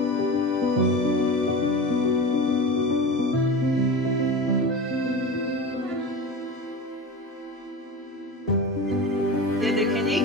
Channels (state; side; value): normal; both; correlation 0.28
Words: ये देखें जी,